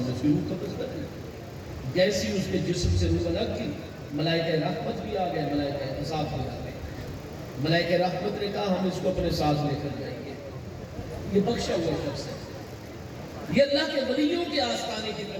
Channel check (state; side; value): identical; both; correlation 1.00